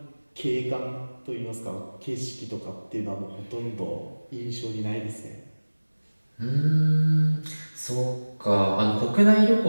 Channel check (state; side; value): inverted; both; correlation -1.00